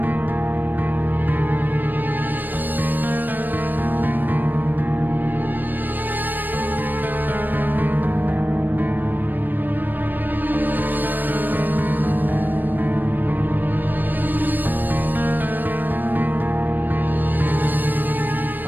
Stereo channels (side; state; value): left; late; 0.090 ms